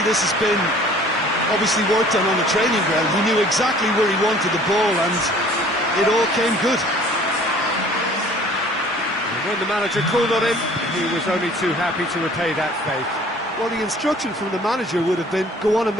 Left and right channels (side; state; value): both; normal; correlation 0.51